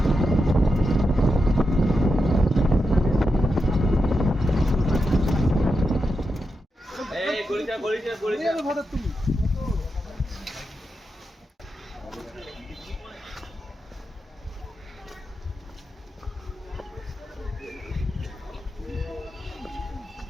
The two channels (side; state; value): both; normal; correlation 0.87